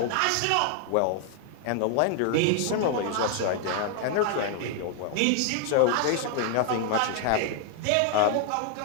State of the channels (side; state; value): both; different; correlation 0.00